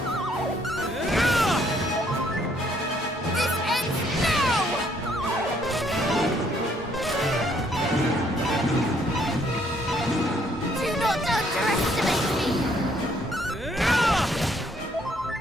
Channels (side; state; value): both; normal; correlation 0.67